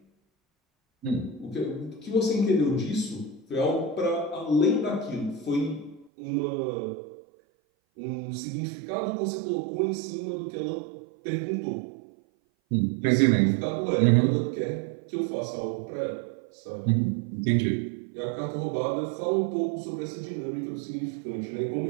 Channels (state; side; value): drops out; left; at 6.1 s